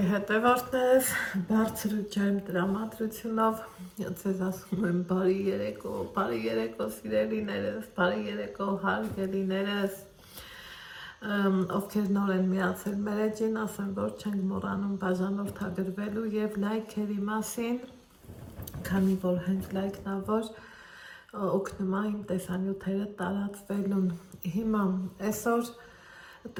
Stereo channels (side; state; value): both; identical; correlation 1.00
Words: հետևորդներ, բարձր ու ջերմ տրամադրությունով ձեզ ասում եմ բարի երեկո սիրելիներս, բարի երեկո հարգելիներս, ովքեր նոր են միացել մեր էջին, ասեմ, որ չենք մոռանում բաժանորդագրվելու և լայքերի մասին, քանի որ հենց լայքն ա, որ օգնում է իմ տեսանյութերը տարածվելուն։ Հիմա այսօր